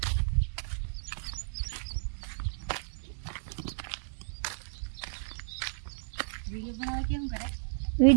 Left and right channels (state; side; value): silent; left; digital silence